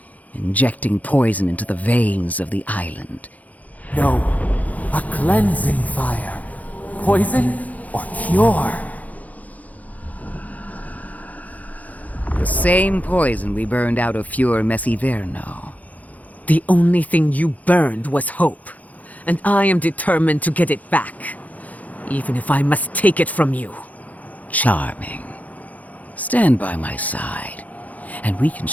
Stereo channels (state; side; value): late; right; 0.076 ms